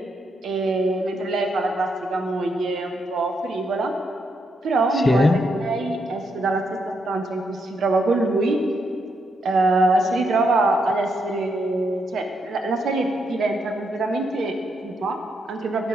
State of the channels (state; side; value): normal; both; correlation 0.79